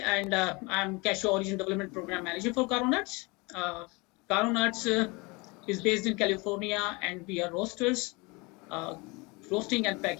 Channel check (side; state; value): right; quieter; 26.6 dB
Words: I'm Cashew Origin Development Program Manager for KERNELS. KERNELS is based in California, and we are roasters, roasting and